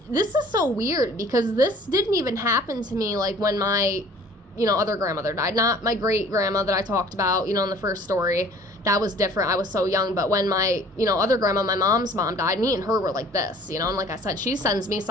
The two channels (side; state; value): both; normal; correlation 0.51